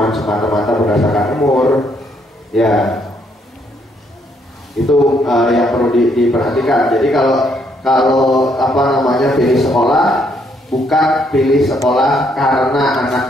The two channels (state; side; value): normal; both; correlation 0.71